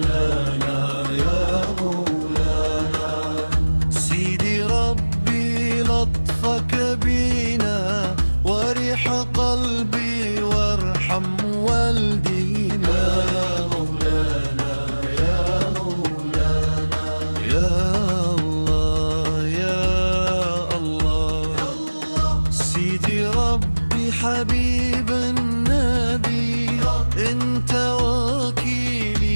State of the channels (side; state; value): both; inverted; correlation -1.00